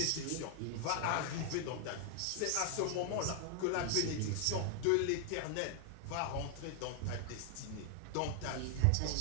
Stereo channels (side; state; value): both; different; correlation 0.00